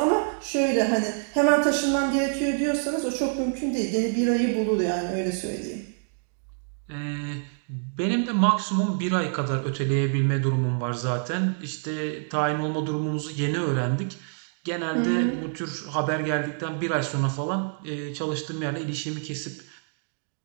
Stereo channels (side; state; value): left; silent; digital silence